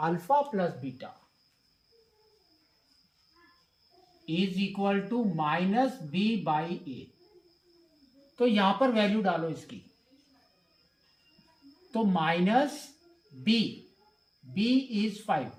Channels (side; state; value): both; identical; correlation 1.00